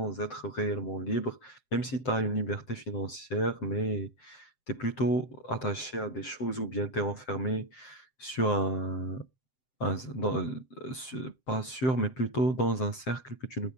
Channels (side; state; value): right; late; 7.7 ms